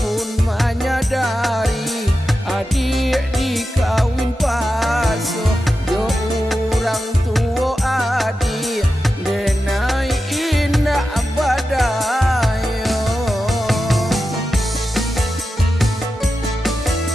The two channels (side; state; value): both; normal; correlation 0.91